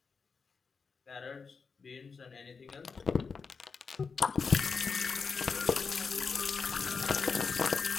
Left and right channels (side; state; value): right; quieter; 5.2 dB